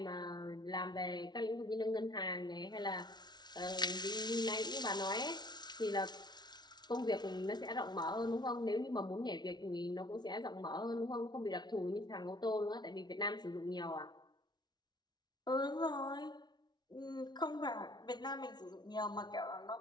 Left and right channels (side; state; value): right; late; 0.20 ms